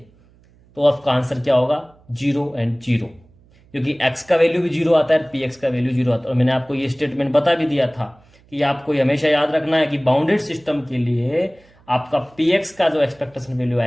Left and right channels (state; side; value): noise; right; hum, 30 dB below the sound